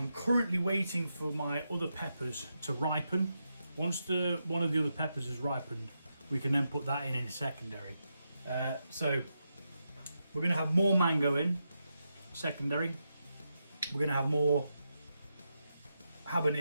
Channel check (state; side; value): inverted; both; correlation -0.86